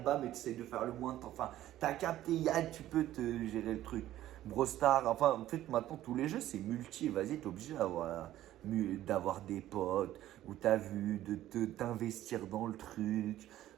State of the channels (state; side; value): quieter; left; 13.6 dB